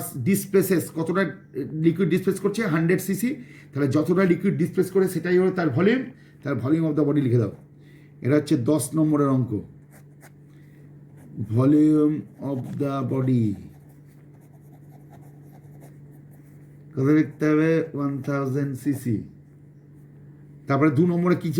ডিসপ্লেসেস, কতটা লিকুইড ডিসপ্লেস করছে 100 সিসি, তাহলে যতটা লিকুইড ডিসপ্লেস করে সেটাই হলো তার ভলিউম, তার ভলিউম অফ দ্য বডি লিখে দাও। এটা হচ্ছে 10 নম্বরের অঙ্ক, ভলিউম অফ দ্য বডি কত লিখতে হবে? 1000 সিসি। তারপরে 2 নম্বরে কি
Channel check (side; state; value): both; identical; correlation 1.00